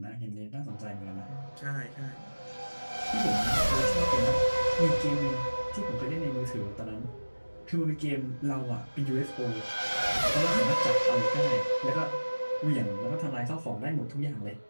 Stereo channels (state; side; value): inverted; both; correlation -1.00